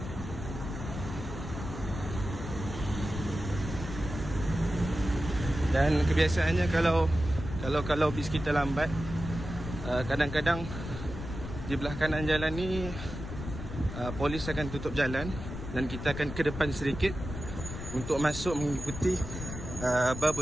Dan kebiasaannya kalau bis kita lambat, kadang-kadang di belah kanan jalan ni polis akan tutup jalan dan kita akan ke depan sedikit untuk masuk mengikuti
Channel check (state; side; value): noise; left; rumble, 8 dB below the sound